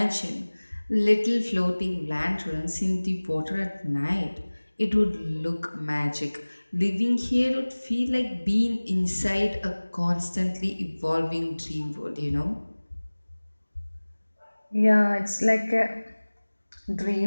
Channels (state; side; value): inverted; both; correlation -1.00